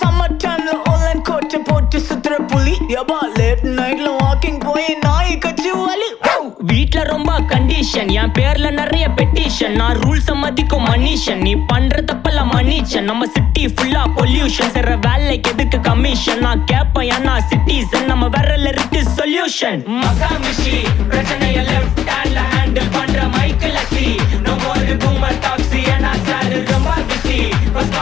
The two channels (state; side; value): quieter; right; 10.2 dB